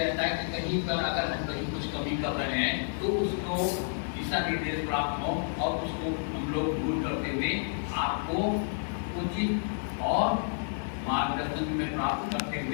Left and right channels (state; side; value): silent; right; 58 dB below the other